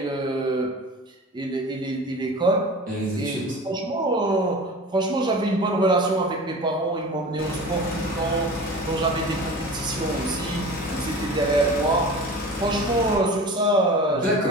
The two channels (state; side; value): normal; both; correlation 0.36